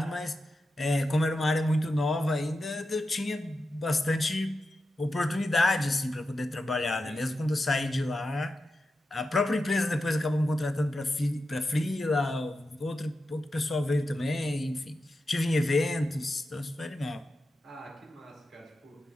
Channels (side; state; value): both; normal; correlation 0.90